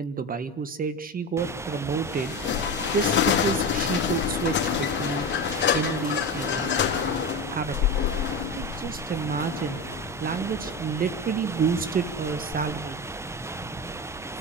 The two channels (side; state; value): both; normal; correlation 0.23